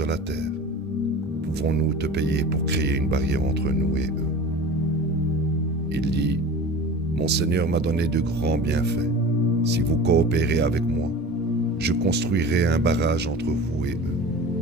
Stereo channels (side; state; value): both; normal; correlation 0.36